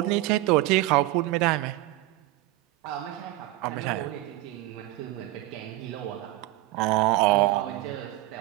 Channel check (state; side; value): quieter; left; 17.4 dB